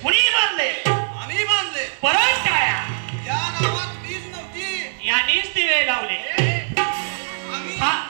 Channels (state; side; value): silent; left; digital silence